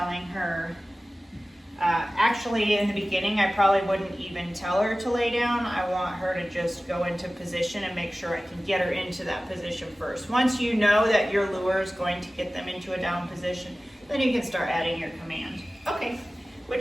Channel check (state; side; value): normal; both; correlation 0.97